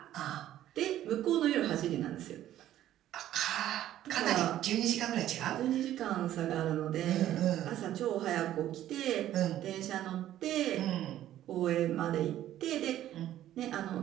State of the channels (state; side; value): quieter; left; 12.6 dB